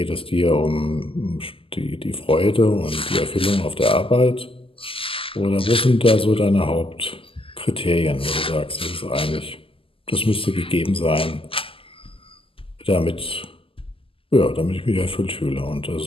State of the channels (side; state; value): right; late; 0.26 ms